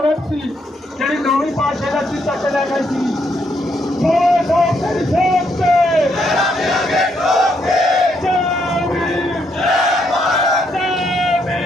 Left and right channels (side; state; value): both; normal; correlation 0.75